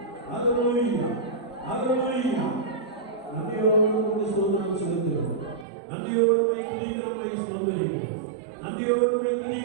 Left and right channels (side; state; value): left; drops out; at 5.7 s